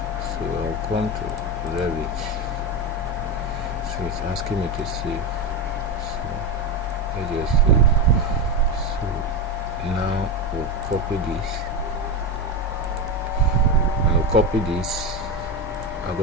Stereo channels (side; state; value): both; normal; correlation 0.15